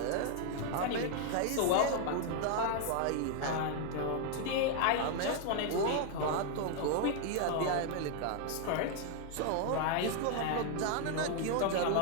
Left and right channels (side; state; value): both; different; correlation 0.00